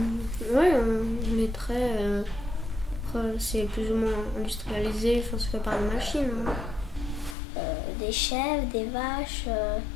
on est très. Après, c'est plus ou moins industrialisé, enfin, c'est fait par des machines. Hein. Des chèvres, des vaches,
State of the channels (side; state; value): right; drops out; at 7.4 s